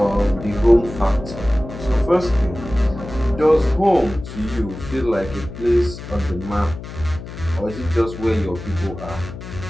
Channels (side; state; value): left; noise; hum, 11 dB below the sound